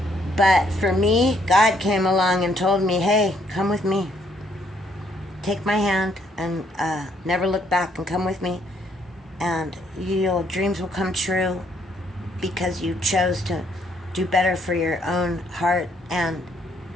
But for me, God came along and told me, hey, come with me. Take my hand and never look back, and come with me. And your dreams will come true because you chose to do better for your own heart and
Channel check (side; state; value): both; normal; correlation 0.69